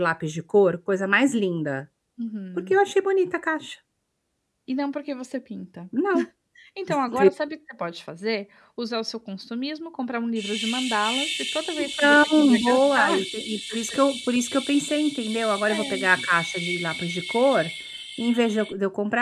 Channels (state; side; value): identical; both; correlation 1.00